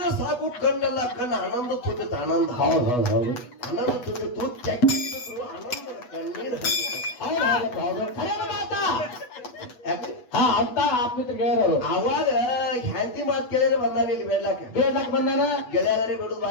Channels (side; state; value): right; late; 8.1 ms